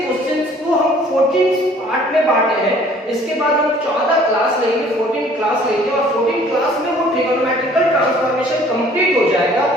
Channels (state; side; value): normal; both; correlation 0.55